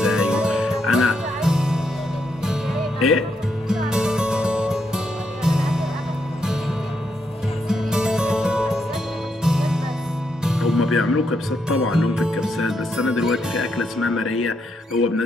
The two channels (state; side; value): normal; both; correlation 0.79